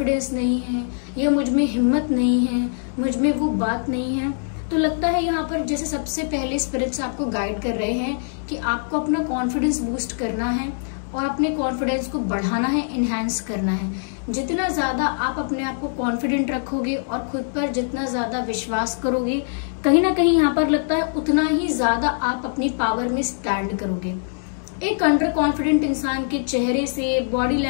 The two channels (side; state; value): right; silent; digital silence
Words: नहीं है या मुझ में हिम्मत नहीं है, मुझ में वो बात नहीं है। तो लगता है यहाँ पर जैसे सबसे पहले स्पिरिट्स आपको गाइड कर रहे हैं कि आपको अपना कॉन्फिडेंस बूस्ट करना है और अपने कॉन्फिडेंस को बढ़ाना है, इनहैंस करना है। जितना ज्यादा आप अपने आप को कॉन्फिडेंट रखोगे और खुद पर जितना ज्यादा विश्वास करोगे, कहीं ना कहीं यहाँ पर लगता है उतना ही ज्यादा आप अपनी पावर में स्टैंड करोगे। एक अंडर कॉन्फिडेंट इंसान के चेहरे से, बॉडी